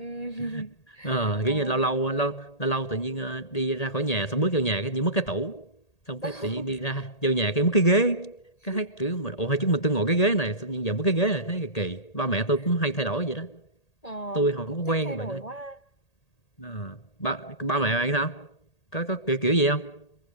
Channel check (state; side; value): late; right; 1.8 ms